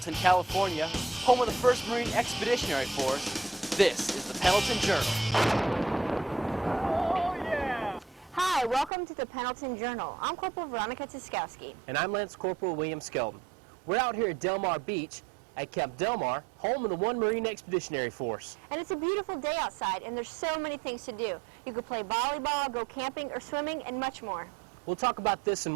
California, home of the 1st Marine Expeditionary Force, this is the Pendleton Journal. Oh, yeah! Hi, welcome to the Pendleton Journal. I'm Corporal Veronica Tiskowski. And I'm Lance Corporal William Skelton. We're out here at Del Mar Beach at Camp Del Mar, home of the 1 Marine Expeditionary Force. And it's a beautiful day outside, and there's so many things to do. You could play volleyball, go camping or swimming, and much more. We'll talk about this and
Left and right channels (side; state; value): left; drops out; at 8.9 s